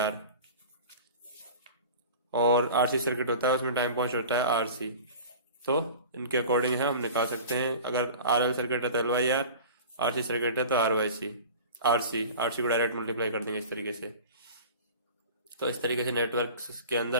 और RC सर्किट होता है उसमें टाइम कांस्टेंट होता है RC। तो इनके अकॉर्डिंग है हम निकाल सकते हैं। अगर RL सर्किट है तो L/R, RC सर्किट है तो R/C। RC को डायरेक्ट मल्टीप्लाई कर देंगे इस तरीके से। तो इस तरीके से नेटवर्क के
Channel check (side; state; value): both; inverted; correlation -0.38